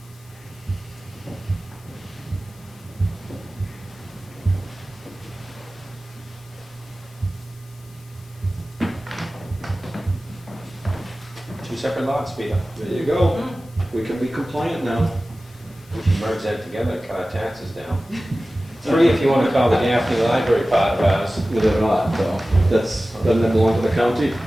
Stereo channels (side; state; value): left; noise; hiss, 28 dB below the sound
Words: Two separate lots, Peter. There you go. We can be compliant now. We should merge that together and cut our taxes down. 3 if you want to call the Gaffney Library part of ours. But they're not, though. Doesn't that belong to the county?